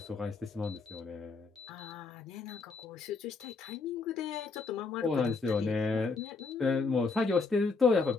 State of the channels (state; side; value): quieter; right; 4.3 dB